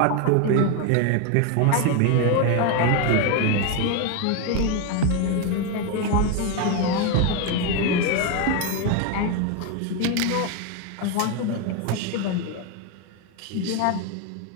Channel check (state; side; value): different; both; correlation 0.01